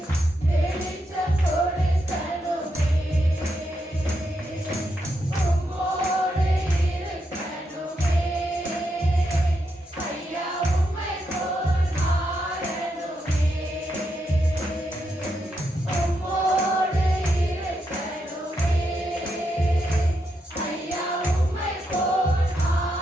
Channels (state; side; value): normal; both; correlation 0.82